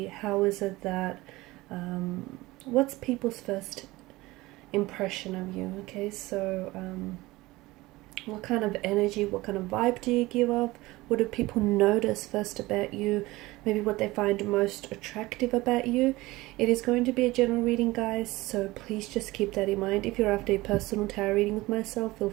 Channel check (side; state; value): left; quieter; 19.8 dB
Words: how is it that, what's people's first impression of you, okay? So, what kind of energy, what kind of vibe do you give off? What do people notice first about you? Maybe what they find most attractive about you. It is going to be a general reading, guys, so please just keep that in mind. If you're after a personal tarot reading with myself, feel